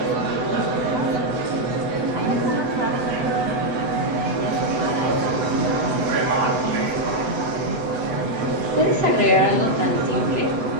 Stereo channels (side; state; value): left; late; 7.9 ms